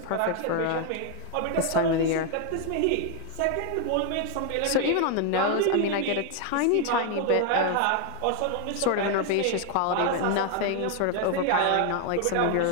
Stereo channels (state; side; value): different; both; correlation 0.01